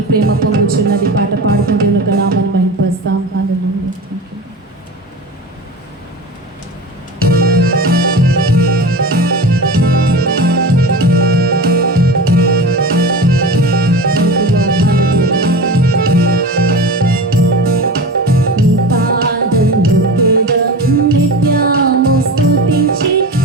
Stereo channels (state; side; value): normal; both; correlation 0.30